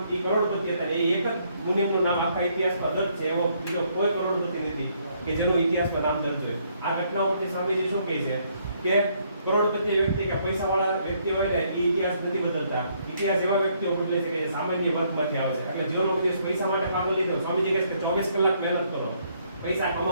એ કરોડપતિ હતા. એ એક જ મુનિમનું નામ આખા ઇતિહાસમાં દર્જ છે. એવો બીજો કોઈ કરોડપતિ નથી કે જેનું ઇતિહાસમાં નામ દર્જ હોય. આ ઘટનાઓ પરથી સ્વામીજી શું કહે છે કે કરોડપતિ વ્યક્તિ કે પૈસાવાળા વ્યક્તિ હોય ને એ ઇતિહાસ નથી બદલતા. ઇતિહાસ એવા વ્યક્તિઓ બદલે છે કે જે સામાન્ય વર્ગમાંથી આવે છે. એટલે જીવનનો દિવસ પૈસા માટે પાગલ નહીં થયો. સ્વામીજી કહે છે કે 24 કલાક મહેનત કરો પૈસા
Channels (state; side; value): inverted; both; correlation -0.70